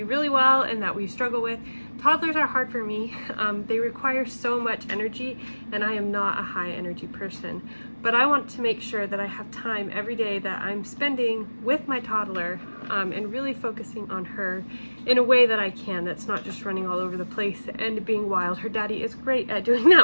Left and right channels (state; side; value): inverted; both; correlation -1.00